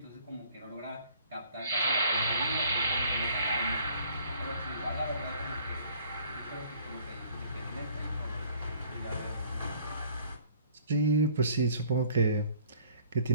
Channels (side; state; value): both; inverted; correlation -0.56